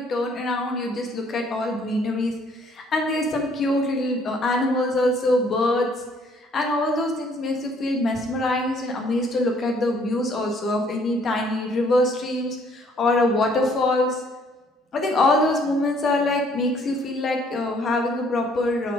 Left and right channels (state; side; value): normal; both; correlation 0.62